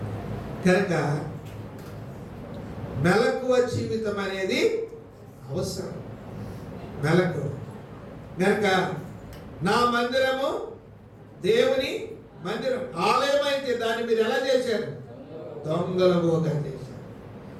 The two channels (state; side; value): identical; both; correlation 1.00